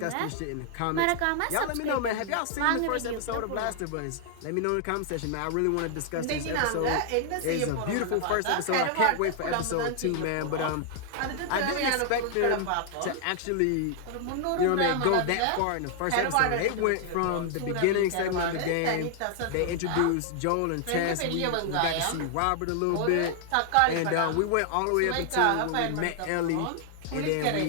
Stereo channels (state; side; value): different; both; correlation 0.00